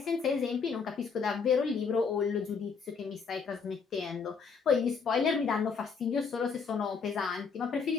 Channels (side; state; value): right; quieter; 5.5 dB